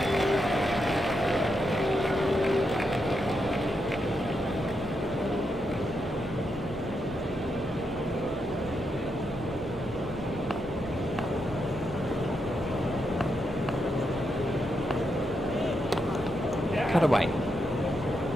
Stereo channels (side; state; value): both; normal; correlation 0.83